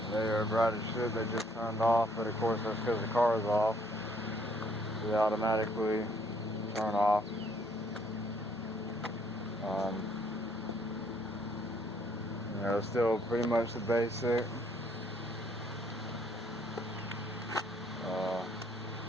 They are bright as shit. They just turned off, but of course that's because the car is off. They automatically turn off. You know, still pretty much the basic.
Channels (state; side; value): normal; both; correlation 0.65